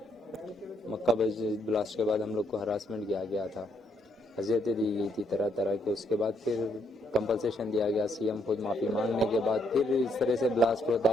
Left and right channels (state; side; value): normal; both; correlation 0.73